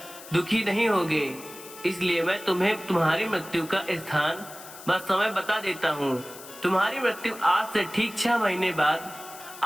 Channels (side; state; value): left; noise; hiss, 16 dB below the sound